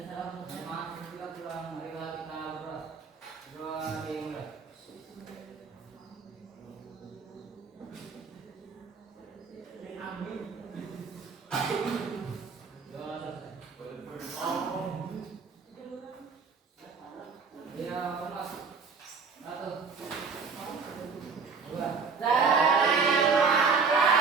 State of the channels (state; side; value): quieter; left; 5.2 dB